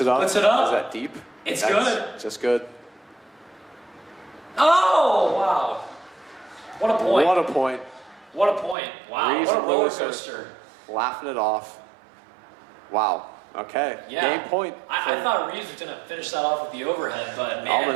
it up. Puts it up. Is that deep? That's good. Just good. Oh, wow. What a point. What a point. What a point. Wow. Reeves what a and roller Lewis coaster. Laughing it off. Wow. Okay. Yeah. Game point. I thought Reeves was going to finish that off with the overhead, but man.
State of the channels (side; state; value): left; drops out; at 8.8 s